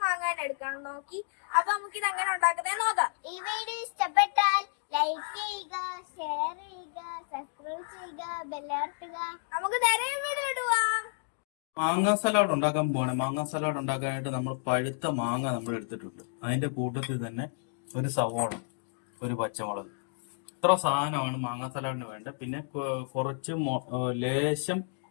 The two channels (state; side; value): silent; right; digital silence